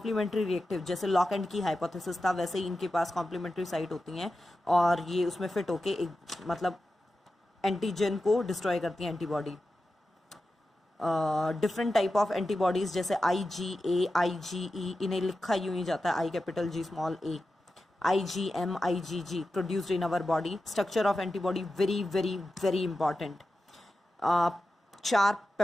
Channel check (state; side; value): normal; both; correlation 0.92